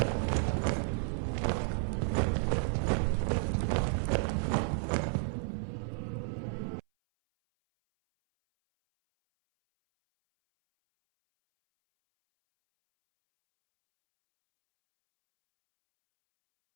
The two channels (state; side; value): silent; left; 56 dB below the other